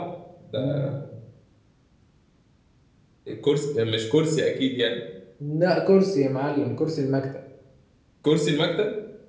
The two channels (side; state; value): both; identical; correlation 1.00